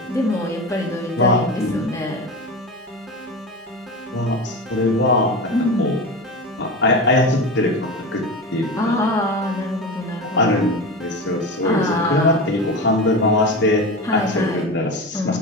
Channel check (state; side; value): normal; both; correlation 0.25